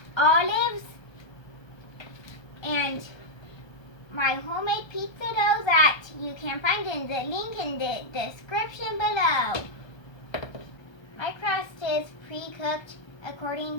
olives, and my homemade pizza dough that you can find in the link in the description below. My crust is pre-cooked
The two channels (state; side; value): late; right; 1.2 ms